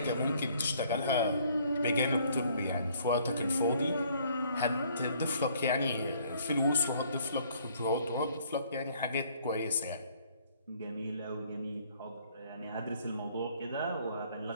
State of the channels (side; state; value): both; inverted; correlation -0.62